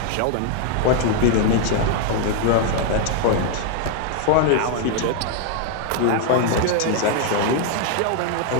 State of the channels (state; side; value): different; both; correlation 0.00